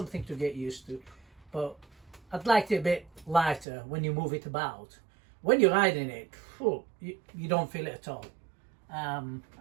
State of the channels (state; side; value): drops out; left; at 3.7 s